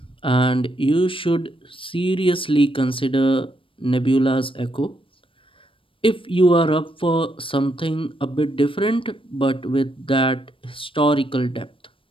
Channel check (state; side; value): late; right; 0.25 ms